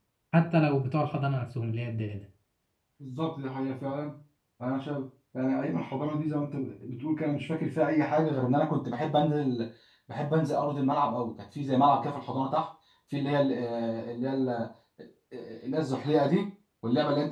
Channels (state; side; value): identical; both; correlation 1.00